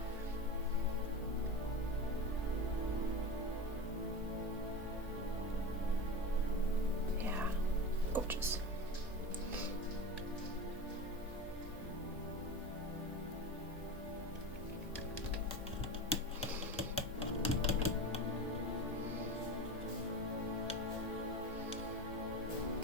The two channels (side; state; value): both; normal; correlation 0.27